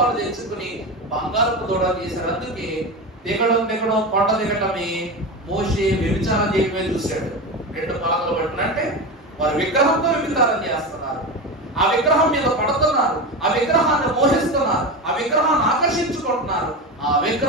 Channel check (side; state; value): both; normal; correlation 0.21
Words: తెచ్చుకుని బంగారపు దూడ తీశారు. అందుకే దిగడం కొండ దిగటమే మోషే వ్యభిచారం చేయడమే చూశాడు. 2 పలకలు పట్టినంటే వారు విగ్రహంతో వ్యభిచారం చేస్తున్నారు, ఆ విగ్రహం మీద పడుతున్నారు, ఆ విగ్రహాన్ని మోహిస్తున్నారు, ఆ విగ్రహాన్ని ఆకర్షించుకుంటున్నారు, ఆ